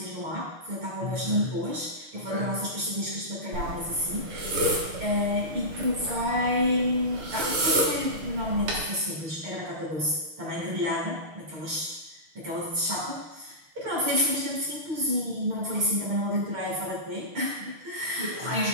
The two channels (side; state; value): left; late; 6.5 ms